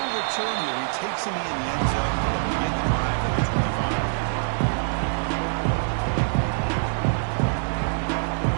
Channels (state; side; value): silent; left; digital silence